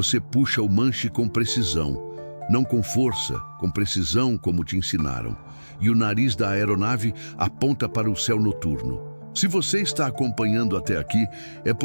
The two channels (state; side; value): inverted; both; correlation -1.00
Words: puxa o manche com precisão, não com força, com precisão como te ensinaram. E o nariz da aeronave aponta para o céu noturno. Se você está acompanhando até aqui, é